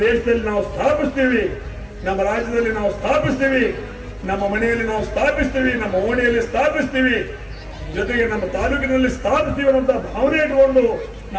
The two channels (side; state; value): both; identical; correlation 1.00